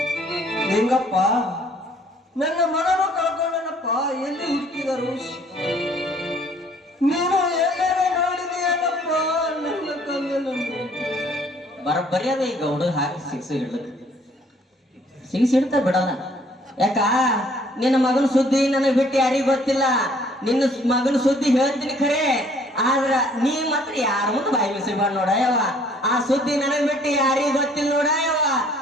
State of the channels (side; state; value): both; normal; correlation 0.60